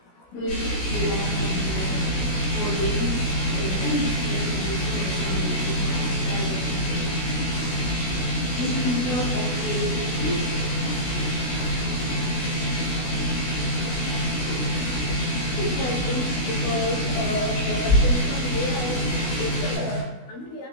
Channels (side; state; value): right; late; 16 ms